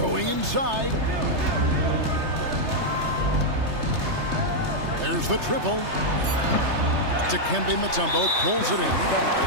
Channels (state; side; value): late; left; 3.3 ms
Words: inside. There's the triple. Dikembe Mutombo pulls it in.